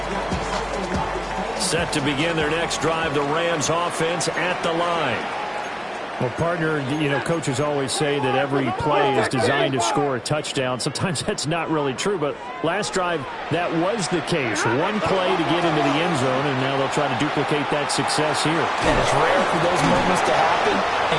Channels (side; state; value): both; identical; correlation 1.00